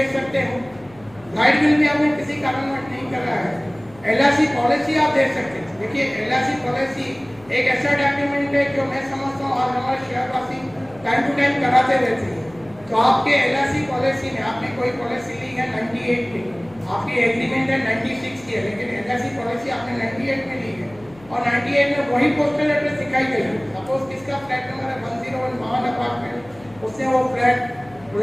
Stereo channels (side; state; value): left; noise; hum, 24 dB below the sound